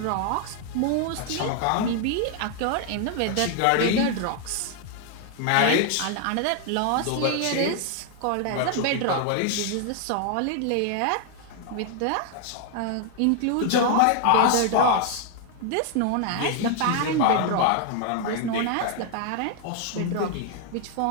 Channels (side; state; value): both; different; correlation 0.00